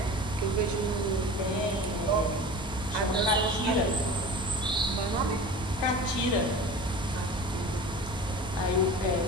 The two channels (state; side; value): normal; both; correlation 0.36